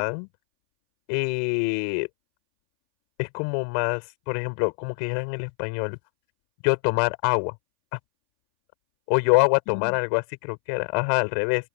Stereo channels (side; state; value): right; silent; 62 dB below the other